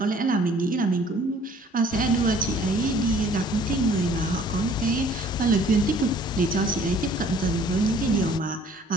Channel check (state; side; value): normal; both; correlation 0.55